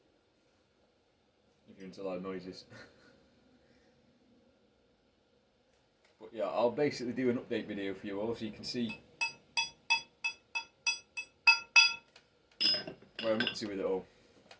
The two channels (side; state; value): both; identical; correlation 1.00